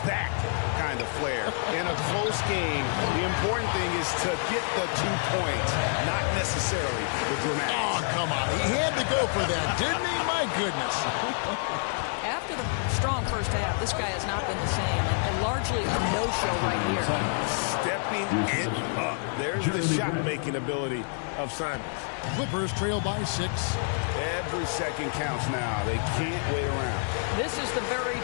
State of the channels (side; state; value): right; silent; 59 dB below the other